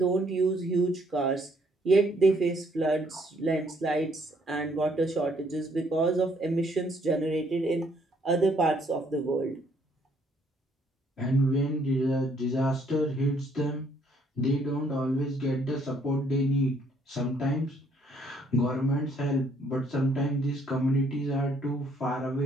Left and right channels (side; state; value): both; normal; correlation 0.67